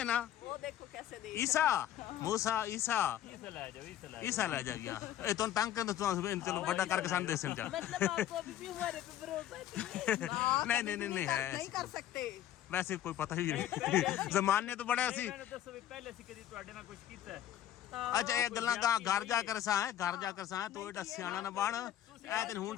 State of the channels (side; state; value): right; quieter; 11.7 dB